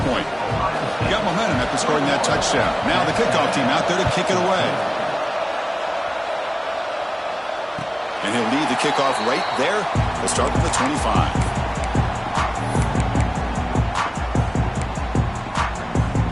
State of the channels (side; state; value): both; identical; correlation 1.00